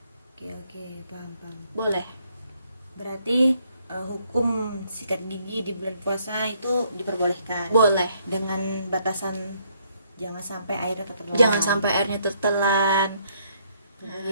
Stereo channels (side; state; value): both; inverted; correlation -0.70